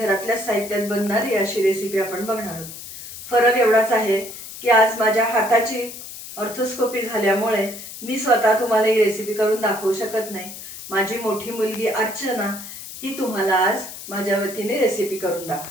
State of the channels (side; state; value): left; noise; hiss, 12 dB below the sound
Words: साहित्यात बनणारी अशी रेसिपी आपण बघणार आहोत। फरक एवढाच आहे की आज माझ्या हाताची ऑर्थोस्कोपी झाल्यामुळे मी स्वतः तुम्हाला ही रेसिपी करून दाखवू शकत नाही। माझी मोठी मुलगी अर्चना ही तुम्हाला आज माझ्या वतीने रेसिपी करून